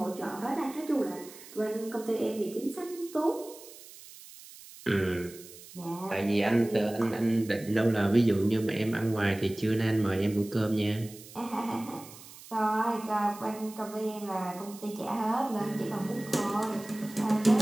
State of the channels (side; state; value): right; noise; hiss, 18 dB below the sound